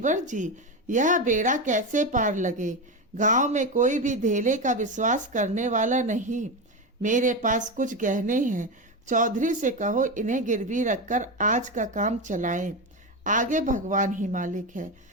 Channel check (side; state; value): both; normal; correlation 0.16